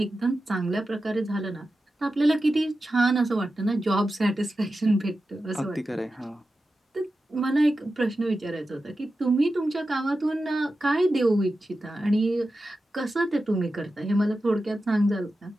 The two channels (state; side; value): normal; both; correlation 0.92